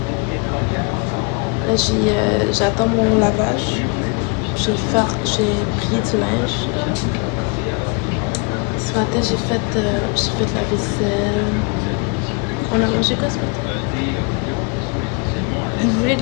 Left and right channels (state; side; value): quieter; right; 33.4 dB